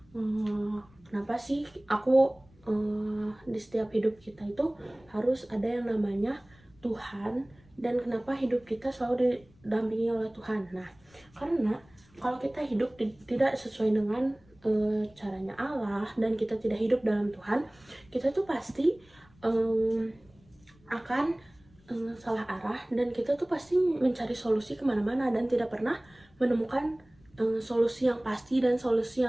kenapa sih aku di setiap hidup kita itu harus ada yang namanya Tuhan, dan kenapa hidup kita selalu didampingi oleh Tuhan? Nah, karena kalau kita hidup tidak sesuai dengan caranya Allah, dan kita tidak hidup dalam Tuhan, kita tuh pasti akan salah arah, dan kita tuh pasti mencari solusi kemana-mana dan tidak pernah menemukan solusi yang pasti dan solusi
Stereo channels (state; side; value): noise; left; rumble, 29 dB below the sound